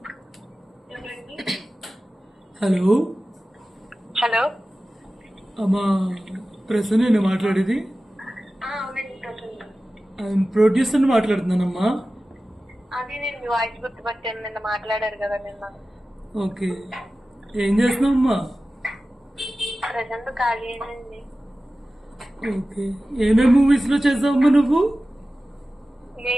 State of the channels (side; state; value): both; normal; correlation 0.95